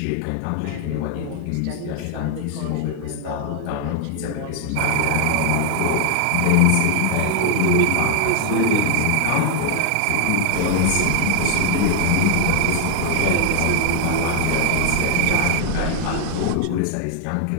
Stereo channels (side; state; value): both; different; correlation 0.00